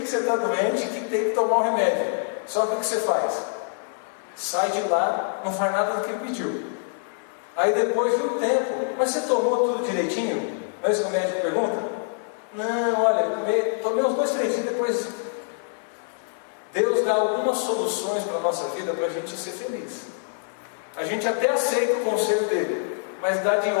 que você está doente e que tem que tomar um remédio. Só que o que você faz? Sai de lá, não faz nada do que ele pediu. Aí depois de um tempo, mas você tomou tudo direitinho? Não é isso que o médico pergunta? Não, olha, tomei uns 2, 3 dias, depois Deus dá algumas soluções para a nossa vida para a gente ser feliz. A gente até aceita o conselho dele, mas dá de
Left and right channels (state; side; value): silent; right; 55 dB below the other